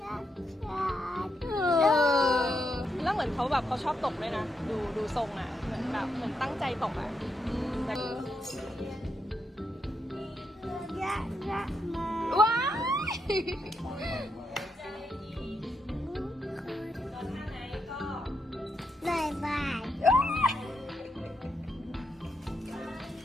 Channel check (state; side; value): normal; both; correlation 0.81